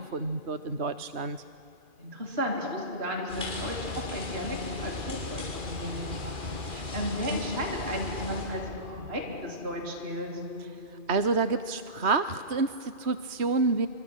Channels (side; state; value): left; late; 2.4 ms